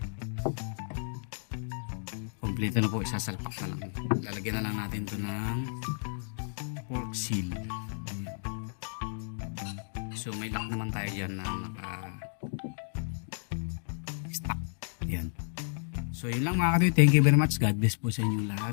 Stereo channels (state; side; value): silent; right; digital silence